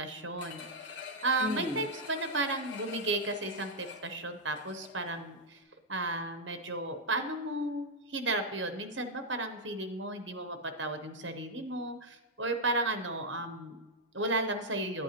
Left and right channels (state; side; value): normal; both; correlation -0.03